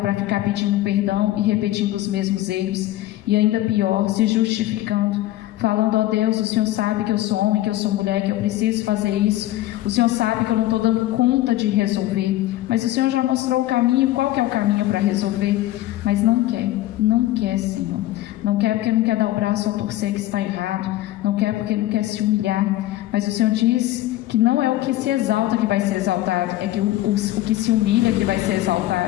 para ficar pedindo perdão e repetindo os mesmos erros e ainda pior, se justificando, falando: ó Deus, o Senhor sabe que eu sou homem, que eu sou mulher, que eu preciso fazer isso, o Senhor sabe que eu não estou dando conta de resolver, mas o Senhor já mostrou o caminho. Qual que é o caminho para resolver? Mas não quer, Senhor, não quer porque não quer dar o braço a torcer que está errado, não quer porque não quer se humilhar, mas o Senhor diz que não é o que se exalta que vai ser exaltado, é que o que se humilha que vai ser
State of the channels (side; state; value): right; quieter; 15.4 dB